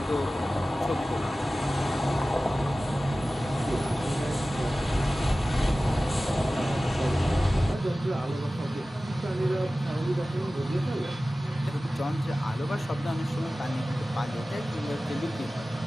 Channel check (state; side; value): normal; both; correlation 0.96